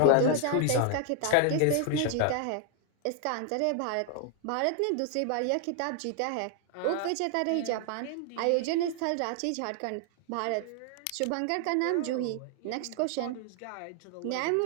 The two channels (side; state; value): both; different; correlation 0.00